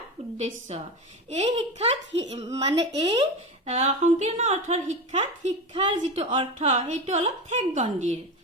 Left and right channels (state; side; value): normal; both; correlation 0.22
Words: উদ্দেশ্য। এই শিক্ষাত এই সংকীৰ্ণ অৰ্থৰ শিক্ষাৰ যিটো অৰ্থ সেইটো অলপ ঠেকগণ্ডিৰ।